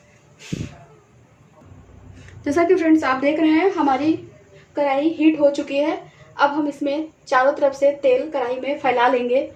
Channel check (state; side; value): identical; both; correlation 1.00